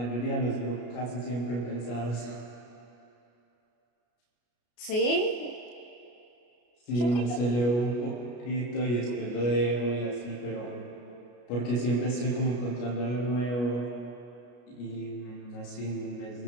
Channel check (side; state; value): right; late; 33 ms